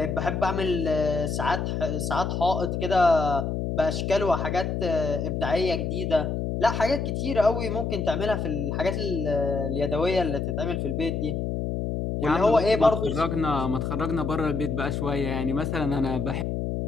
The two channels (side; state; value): left; noise; hum, 2 dB below the sound